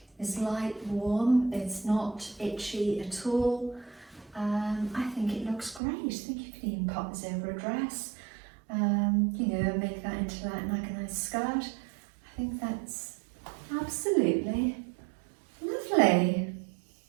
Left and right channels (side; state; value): left; drops out; at 5.8 s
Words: is light, warm, it's not itchy at all. I think it looks great. I think you can even pop this over a dress, you know, make that into like a nice skirt. I think that's absolutely lovely.